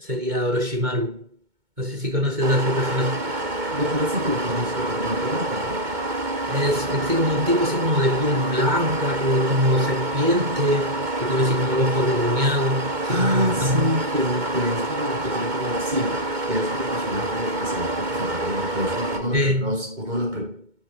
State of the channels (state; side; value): late; left; 2.2 ms